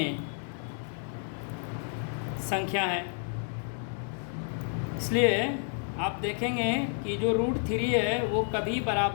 संख्या है। इसलिए आप देखेंगे कि जो रूट 3 है वो कभी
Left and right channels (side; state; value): right; silent; 57 dB below the other